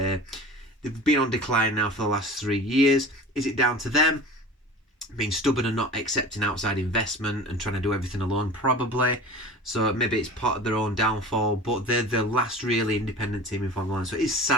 been on decline now for the last 3 years. Is it down to them being stubborn and not accepting outside investment and trying to do everything alone? Probably. So maybe it's part of their own downfall, but they're the last really independent team in Formula 1. So it's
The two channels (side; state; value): both; normal; correlation 0.38